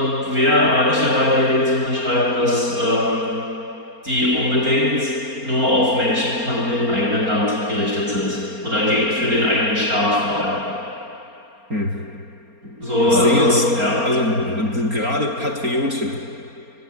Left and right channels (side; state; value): left; late; 4.3 ms